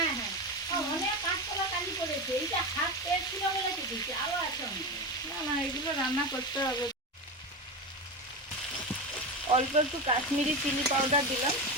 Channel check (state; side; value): normal; both; correlation 0.20